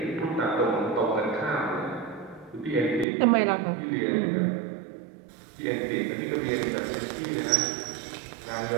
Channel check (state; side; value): drops out; left; at 3.1 s